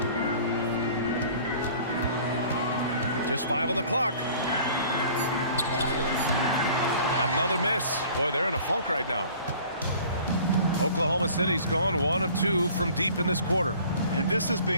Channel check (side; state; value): both; inverted; correlation -0.49